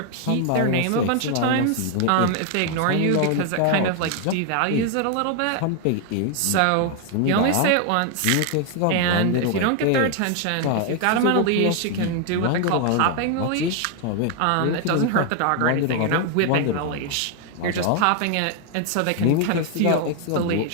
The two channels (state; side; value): different; both; correlation 0.00